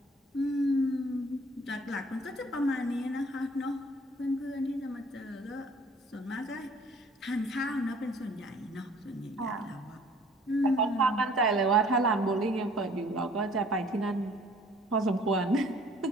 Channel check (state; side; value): normal; both; correlation 0.55